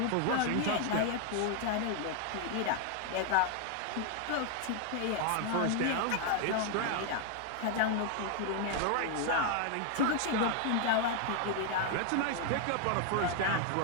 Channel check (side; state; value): both; different; correlation 0.00